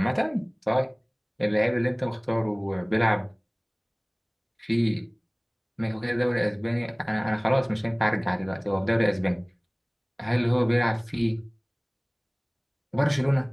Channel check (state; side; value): identical; both; correlation 1.00